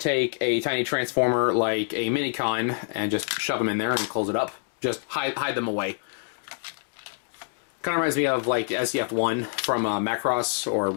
a tiny transformer like a Minicon and just shove them in there and close it up. Just hide them away. Kind of reminds me of like SDF-1 from Macross or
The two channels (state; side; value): silent; right; 58 dB below the other